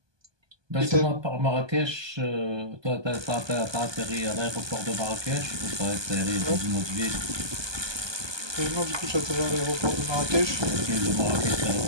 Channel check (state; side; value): late; left; 1.2 ms